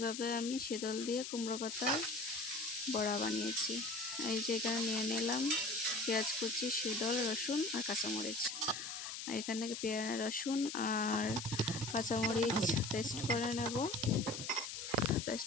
আমি শীতল দিয়ে কুমড়ো পাতার বড়া বানিয়েছি। এই যে এখানে নিয়ে নিলাম পেঁয়াজ কুচি, শীতল, রসুন আর কাঁচামরিচ। এখানে রসুন আর কাঁচামরিচ পেস্ট করে নেব।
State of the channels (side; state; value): left; noise; hiss, 7 dB below the sound